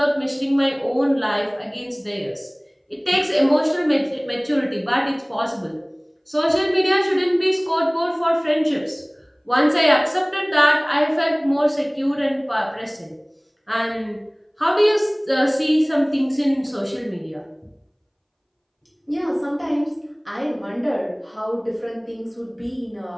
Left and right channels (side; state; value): both; identical; correlation 1.00